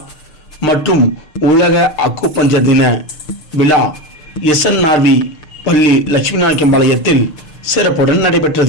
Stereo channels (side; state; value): right; late; 6.6 ms